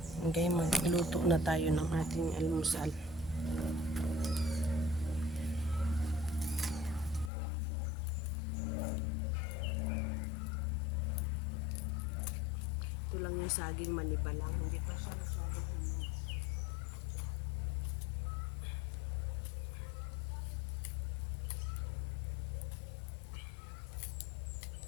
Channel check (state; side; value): drops out; right; at 7.3 s